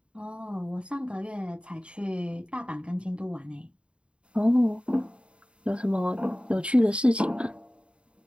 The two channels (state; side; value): late; left; 0.057 ms